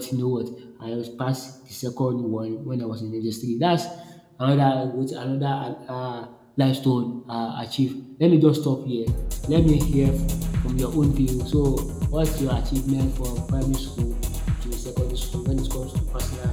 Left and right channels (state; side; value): identical; both; correlation 1.00